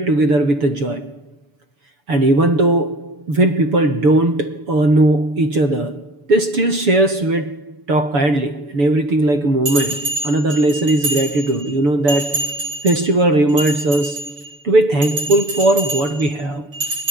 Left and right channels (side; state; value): left; late; 6.9 ms